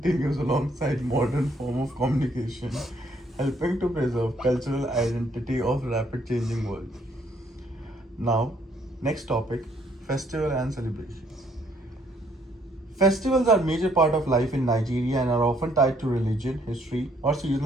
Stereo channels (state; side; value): normal; both; correlation 0.67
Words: alongside modern form of communication, helping to preserve cultural identity of rapid changing world. Now, next topic, festival and celebrations. Festivals are a major part of life in Nigeria and are often tied to religion, history, or